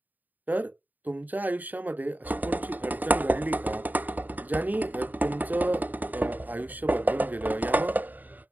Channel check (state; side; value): late; left; 0.084 ms